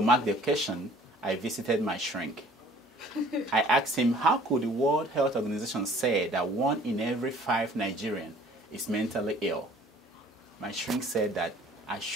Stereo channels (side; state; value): both; normal; correlation 0.53